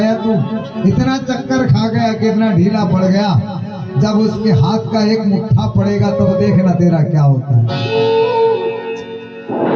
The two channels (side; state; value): both; identical; correlation 1.00